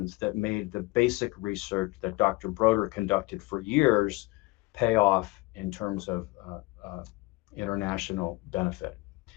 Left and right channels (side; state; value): right; quieter; 22.7 dB